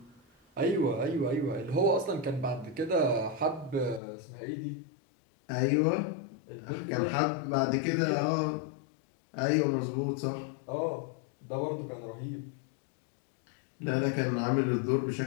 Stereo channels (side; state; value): right; drops out; at 4.0 s